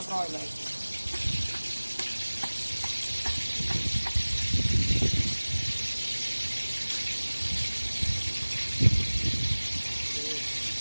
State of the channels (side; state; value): both; inverted; correlation -1.00